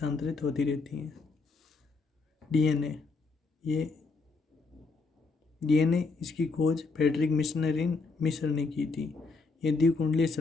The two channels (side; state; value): right; quieter; 4.1 dB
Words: होती रहती है। डीएनए, ये डीएनए इसकी खोज फ्रेडरिक मिश्र ने की थी। ये द्विकुंडलीय